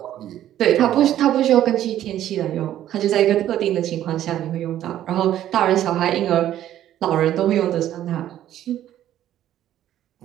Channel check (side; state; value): left; quieter; 12.1 dB